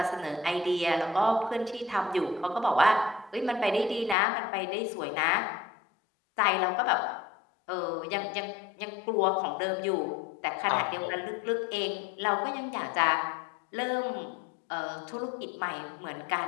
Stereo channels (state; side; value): drops out; right; at 4.2 s